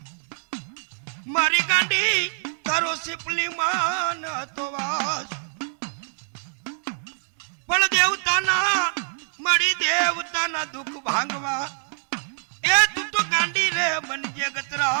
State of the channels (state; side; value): silent; left; digital silence